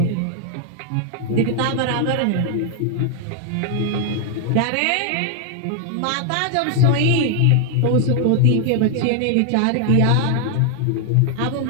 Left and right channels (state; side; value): different; both; correlation 0.00